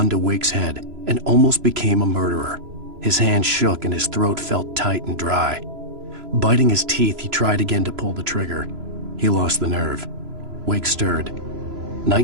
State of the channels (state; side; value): late; left; 3.0 ms